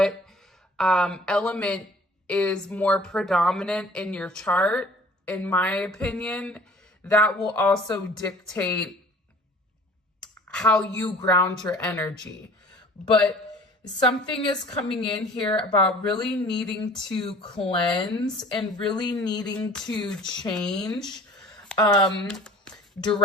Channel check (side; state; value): both; normal; correlation 0.48